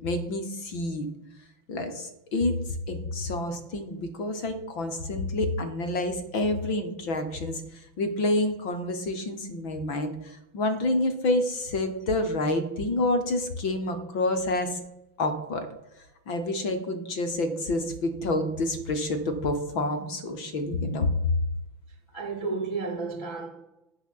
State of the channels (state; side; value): late; right; 6.0 ms